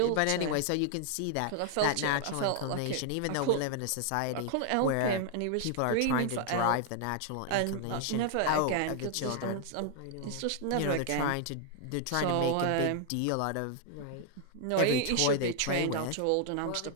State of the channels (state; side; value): different; both; correlation 0.00